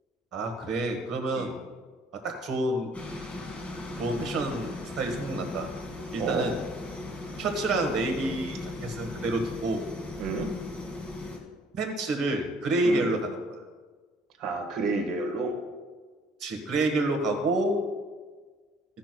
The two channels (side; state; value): both; normal; correlation 0.60